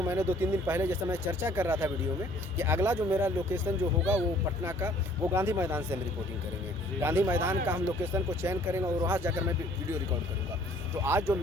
मैंने 2-3 दिन पहले जैसा मैं चर्चा कर रहा था वीडियो में कि अगला जो मेरा लोकेशन जो होगा वो पटना का, वो गांधी मैदान से हम रिपोर्टिंग करेंगे। गांधी मैदान का हम लोकेशन को चयन करेंगे और वहाँ जाकर मैं वीडियो रिकॉर्ड करूँगा। तो आज जो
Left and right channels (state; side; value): normal; both; correlation 0.57